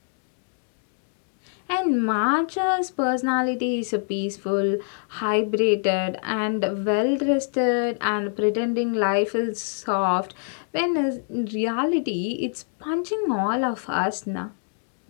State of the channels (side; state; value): right; silent; digital silence